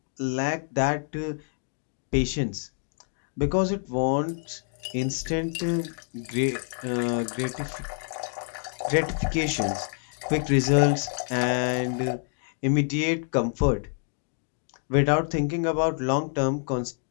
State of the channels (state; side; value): silent; right; 57 dB below the other